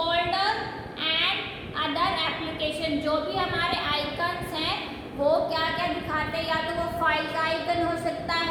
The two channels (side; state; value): both; identical; correlation 1.00